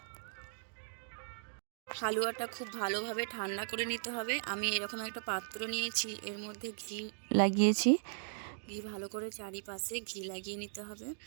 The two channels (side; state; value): left; silent; digital silence